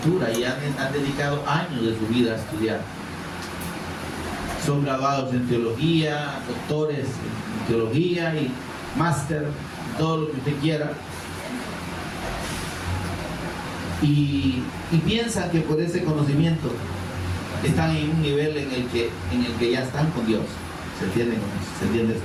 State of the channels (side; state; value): both; identical; correlation 1.00